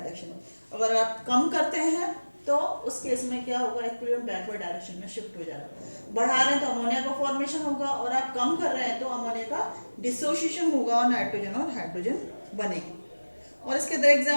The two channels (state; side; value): inverted; both; correlation -1.00